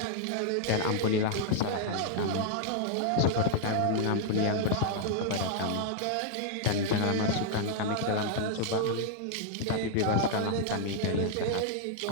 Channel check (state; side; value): different; both; correlation 0.00